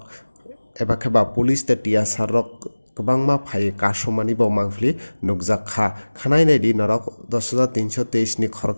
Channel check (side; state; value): both; inverted; correlation -1.00